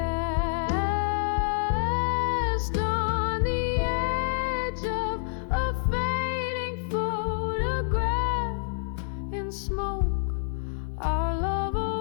on the edge of a fading photograph. In smoke our love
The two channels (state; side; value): silent; right; 60 dB below the other